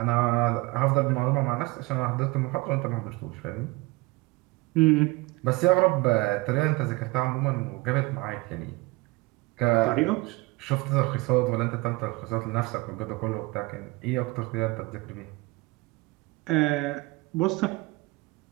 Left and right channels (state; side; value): quieter; left; 22.3 dB